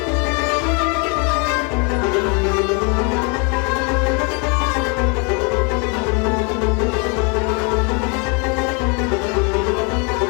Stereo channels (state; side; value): quieter; right; 33.4 dB